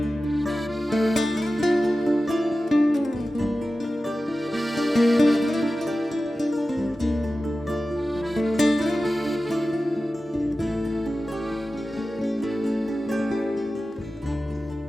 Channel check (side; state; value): both; normal; correlation 0.94